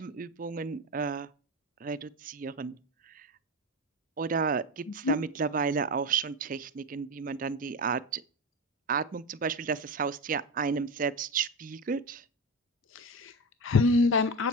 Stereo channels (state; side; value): normal; both; correlation 0.20